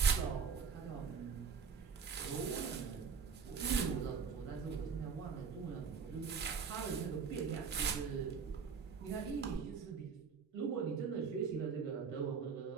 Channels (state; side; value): quieter; left; 5.9 dB